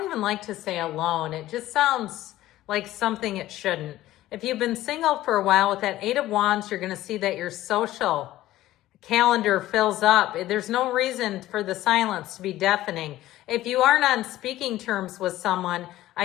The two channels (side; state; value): right; quieter; 15.1 dB